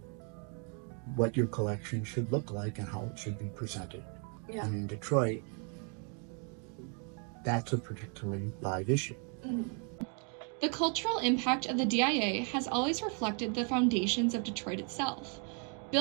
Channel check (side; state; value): left; quieter; 39.5 dB